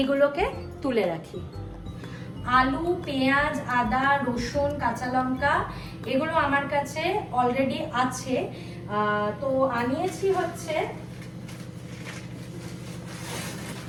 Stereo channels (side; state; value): both; identical; correlation 1.00